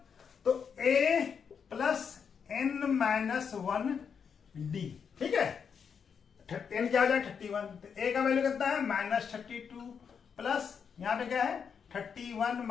तो a plus n minus 1d, ठीक है n क्या हो जाएगा 31, तो a का वैल्यू कितना है माइनस 32 प्लस यहाँ पे क्या है 31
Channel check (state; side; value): quieter; right; 6.7 dB